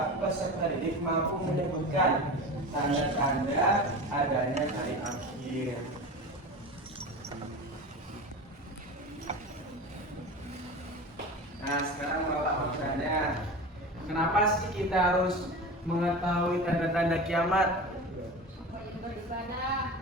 peserta didik mampu menyebutkan tanda-tanda adanya hari akhir. Nah, sekarang Bapak bertanya, kenapa sih kita harus mengetahui tanda-tanda kiamat?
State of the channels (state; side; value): normal; both; correlation 0.30